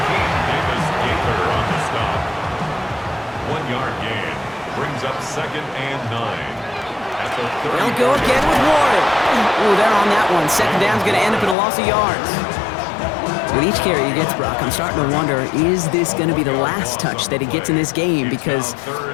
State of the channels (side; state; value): right; drops out; at 11.6 s